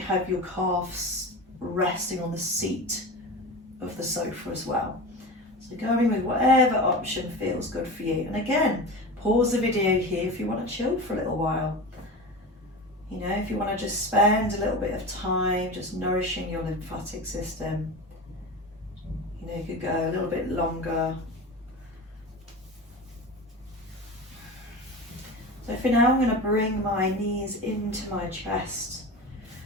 have your calves resting on the seat of the sofa as well. So going with whatever option feels good for you. And again, pause the video here if you want to chill for a little while. You know, if you want to just spend a little bit of time just nourishing your lymphatic system. You know, you could go a little bit longer. So for now, I'm going to bring my knees into my chest.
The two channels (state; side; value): normal; both; correlation 0.28